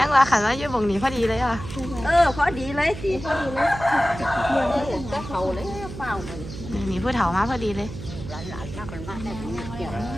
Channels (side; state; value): right; noise; hum, 11 dB below the sound